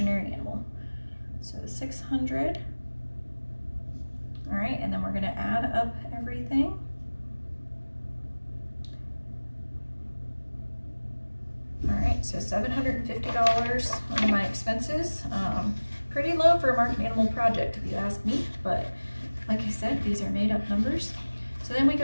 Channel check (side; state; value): both; inverted; correlation -1.00